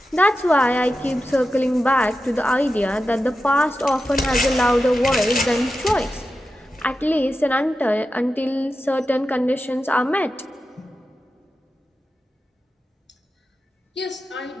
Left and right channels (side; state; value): both; normal; correlation 0.91